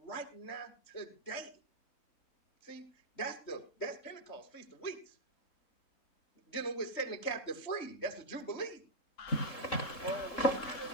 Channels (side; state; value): right; late; 3.7 ms